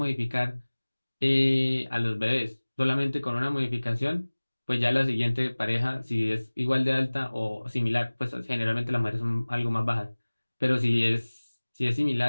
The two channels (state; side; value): inverted; both; correlation -1.00